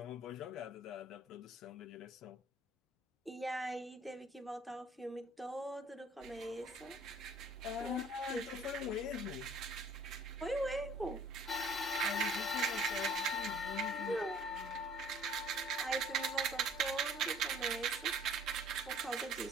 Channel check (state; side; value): normal; both; correlation 0.54